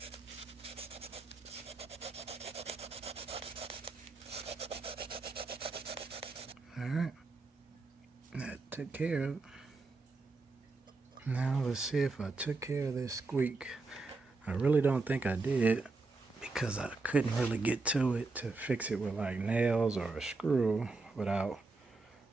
Alright, that took care of it. Now let's see if I took care of this squeak. I really don't think I did, because I couldn't really get to it to fix it with like nails or a screw without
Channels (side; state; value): left; quieter; 3.7 dB